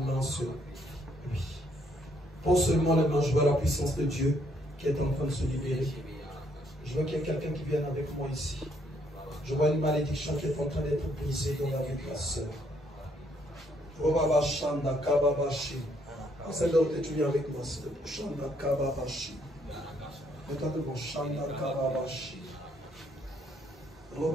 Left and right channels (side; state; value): both; normal; correlation 0.70